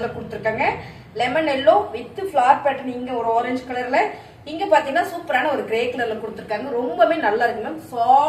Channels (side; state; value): both; identical; correlation 1.00